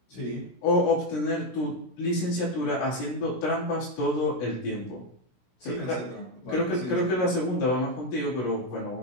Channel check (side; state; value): right; late; 16 ms